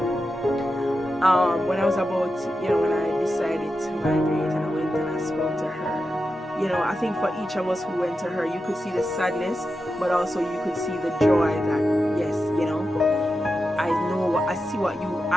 When I was about, you know, when I decided to migrate and I went and I spoke to her, you know, I think for each of us who went to her, you could see the sadness, but also you could see the joy that, yes, you know,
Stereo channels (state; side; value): normal; both; correlation 0.90